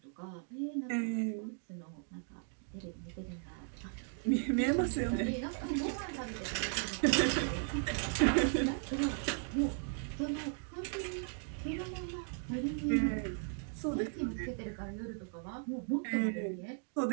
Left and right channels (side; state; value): left; silent; 53 dB below the other